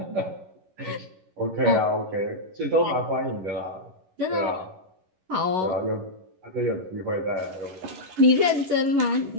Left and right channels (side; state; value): left; late; 11 ms